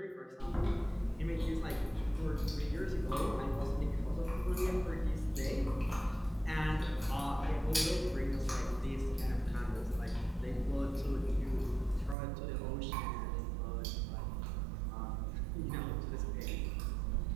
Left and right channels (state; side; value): drops out; left; at 12.2 s